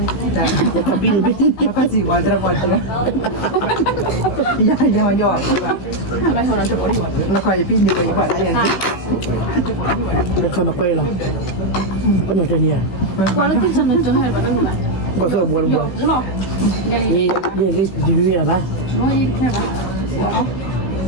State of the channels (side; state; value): right; late; 16 ms